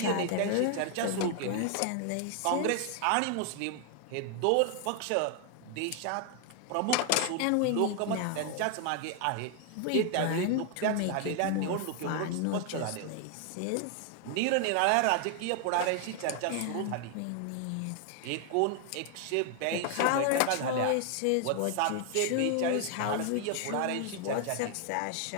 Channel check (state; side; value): different; both; correlation 0.00